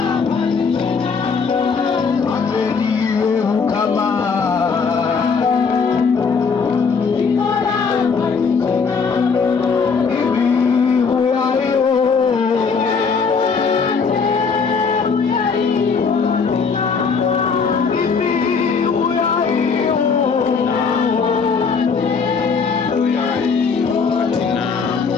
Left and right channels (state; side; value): quieter; right; 5.3 dB